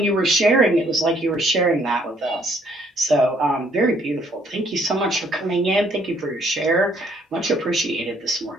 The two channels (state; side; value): normal; both; correlation 0.65